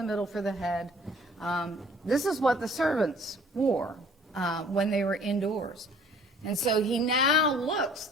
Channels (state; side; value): normal; both; correlation 0.54